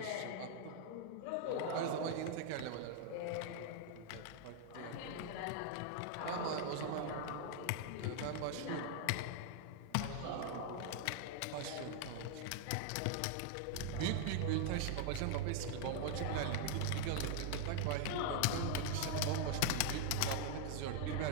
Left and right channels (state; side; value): different; both; correlation 0.00